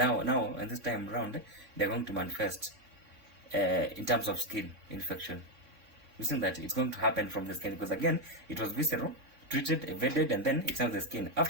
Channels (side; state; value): left; late; 3.6 ms